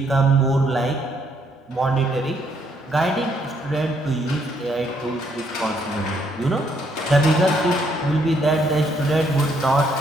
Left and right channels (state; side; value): normal; both; correlation 0.71